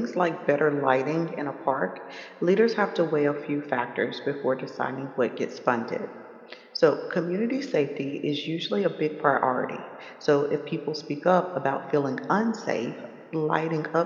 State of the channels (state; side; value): identical; both; correlation 1.00